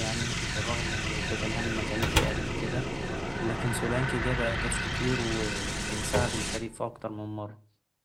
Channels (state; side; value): identical; both; correlation 1.00